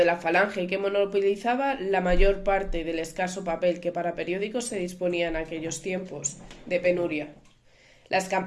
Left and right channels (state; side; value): identical; both; correlation 1.00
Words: la falange que monopolizaba la mayor parte del escaso papel que para periódicos se disponía en aquellos tiempos de penuria. Las